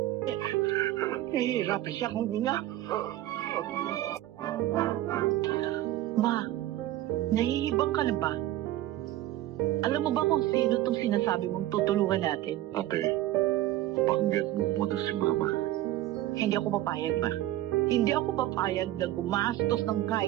Nahihirapan siya kung hininga. Ma, nahihibang ka na ba? Alam mo ba kung sino tong sinasabi mong tutulungan natin? Ate, pakinggan mo muna si Mama. Hindi ako papayag, ma. Hindi ako papayag na gumastos ng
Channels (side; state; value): left; quieter; 14.8 dB